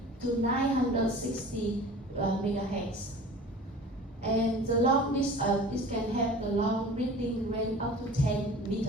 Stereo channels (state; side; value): normal; both; correlation 0.41